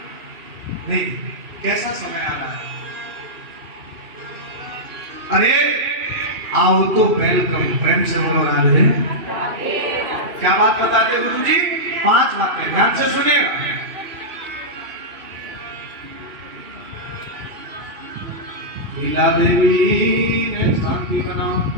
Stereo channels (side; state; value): left; late; 2.7 ms